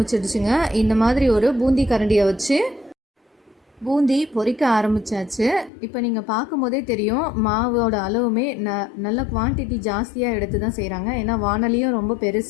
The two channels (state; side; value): drops out; right; at 5.7 s